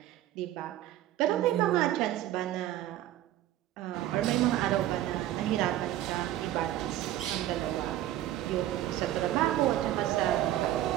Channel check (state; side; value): quieter; left; 13.6 dB